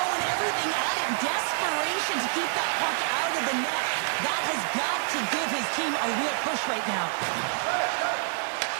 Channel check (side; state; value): left; silent; 57 dB below the other